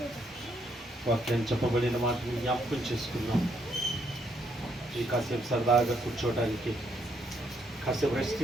వాక్యం చెప్పబడిన మాటను జ్ఞాపకం చేసుకున్నాం. ఈ కాసేపు సరదాగా కూర్చోవడానికి, కాసేపు రెస్ట్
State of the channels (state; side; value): normal; both; correlation 0.73